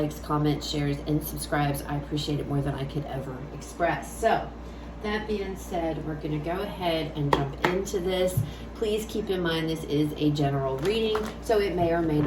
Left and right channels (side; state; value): both; identical; correlation 1.00